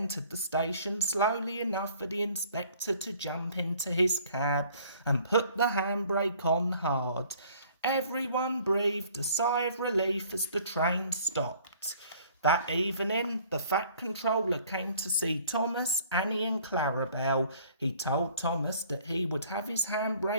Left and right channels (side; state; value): both; inverted; correlation -0.55